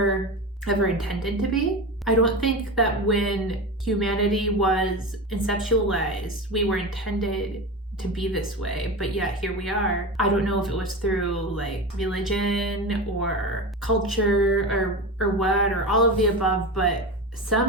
ever intended to be. I don't think that when humanity was conceptualized, we were intended to be this way, but yet here we are. I don't know if it was through like religion or culture or what, or all of the above, but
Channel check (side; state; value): both; normal; correlation 0.25